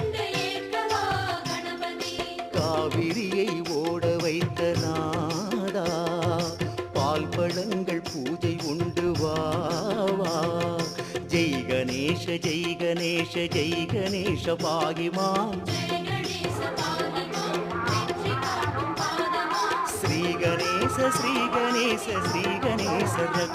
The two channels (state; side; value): noise; right; hum, 28 dB below the sound